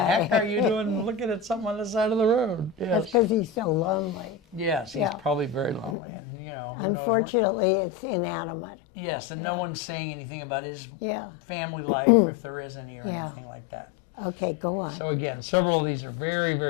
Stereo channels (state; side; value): drops out; right; at 6.0 s